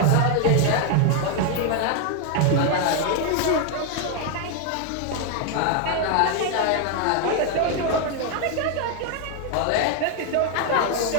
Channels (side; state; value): both; different; correlation 0.01